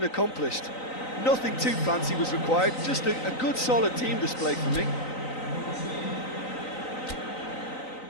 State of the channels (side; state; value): right; late; 3.9 ms